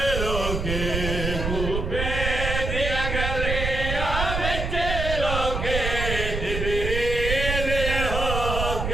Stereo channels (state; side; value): noise; right; rumble, 2 dB below the sound